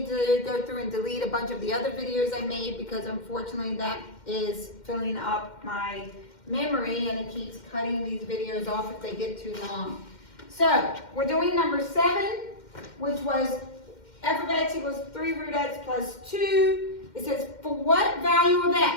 to go through and delete a bunch of the other videos I made because unfortunately that is filling up my memory and it keeps cutting these videos off if they get too long. So, we're doing number 7, which was f of x equals 3 root x plus 2. It says, for what value of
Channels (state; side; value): late; right; 2.1 ms